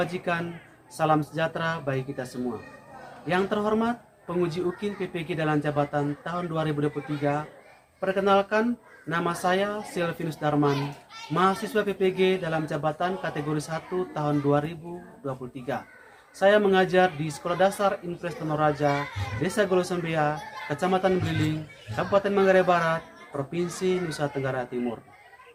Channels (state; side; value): identical; both; correlation 1.00